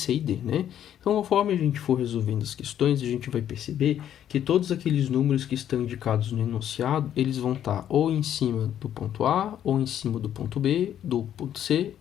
e D, né? Então, conforme a gente for resolvendo as questões, a gente vai perceber que todos aqueles números que estão indicados no enunciado, eles vão estar ou em cima do ponto A, ou em cima do ponto B, do ponto C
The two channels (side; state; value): right; quieter; 10.4 dB